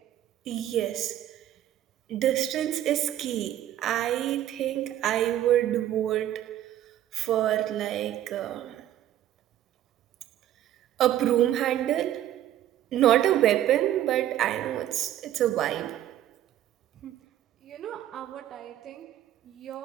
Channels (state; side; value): quieter; left; 12.3 dB